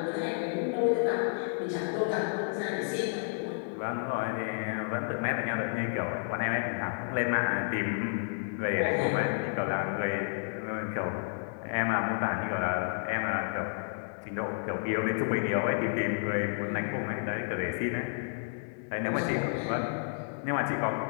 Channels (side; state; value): right; silent; 57 dB below the other